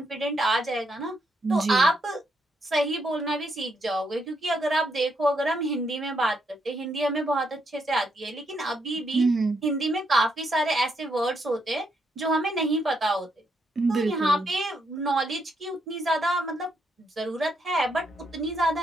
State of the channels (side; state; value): both; normal; correlation 0.77